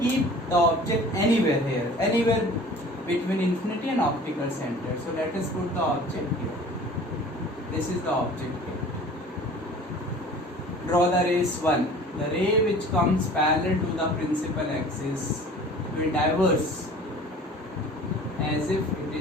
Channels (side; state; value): both; normal; correlation 0.45